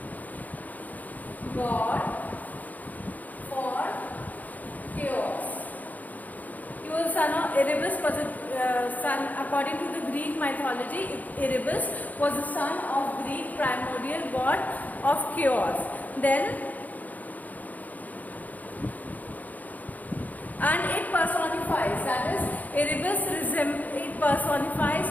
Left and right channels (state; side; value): late; right; 0.079 ms